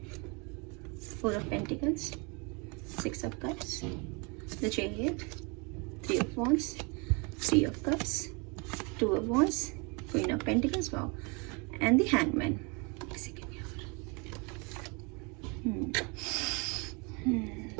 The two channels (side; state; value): left; quieter; 31.3 dB